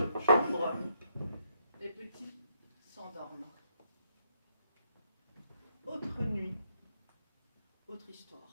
chambre. Les petits s'endorment. Autre nuit, autre histoire.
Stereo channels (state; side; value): inverted; both; correlation -0.75